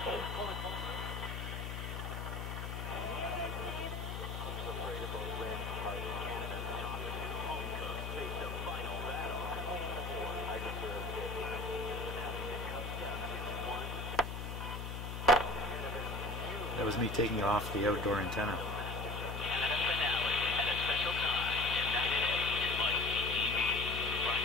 That was me taking off the outdoor antenna.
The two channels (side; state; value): left; noise; hum, 5 dB below the sound